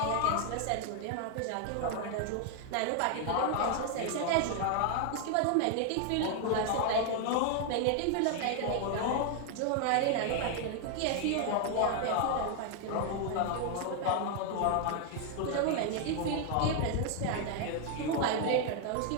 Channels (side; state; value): both; different; correlation 0.00